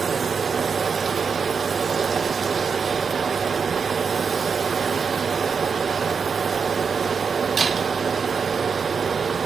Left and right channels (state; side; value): quieter; left; 5.8 dB